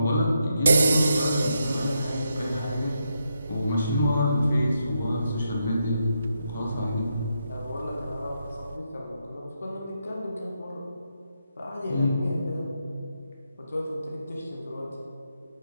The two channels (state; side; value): inverted; both; correlation -0.82